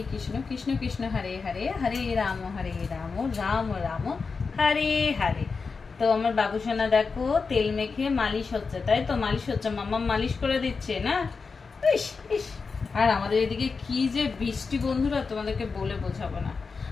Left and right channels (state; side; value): quieter; right; 4.8 dB